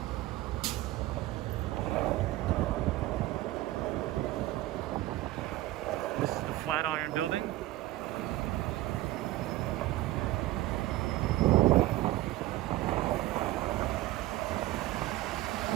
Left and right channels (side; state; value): left; quieter; 16.5 dB